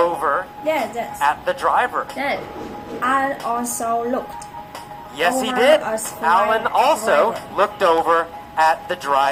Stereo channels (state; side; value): identical; both; correlation 1.00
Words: Yes. at the driver? Yes. Alan also looked. Yes, he Over did. as Alan driver. also looked over at the